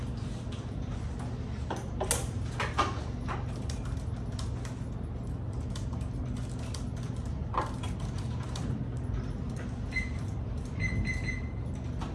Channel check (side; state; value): both; identical; correlation 1.00